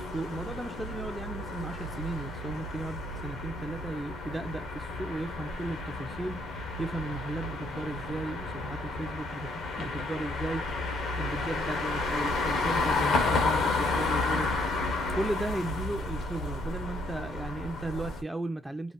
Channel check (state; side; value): normal; both; correlation 0.70